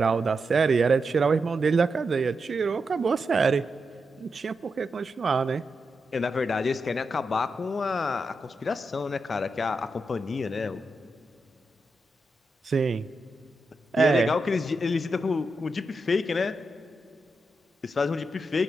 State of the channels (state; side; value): normal; both; correlation 0.86